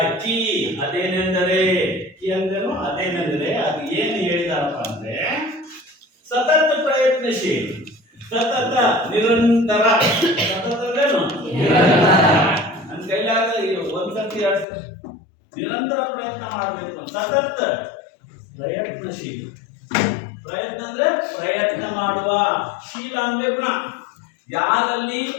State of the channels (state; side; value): drops out; right; at 14.7 s